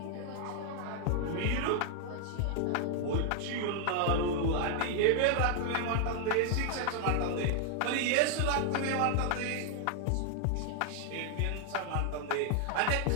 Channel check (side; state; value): both; different; correlation 0.00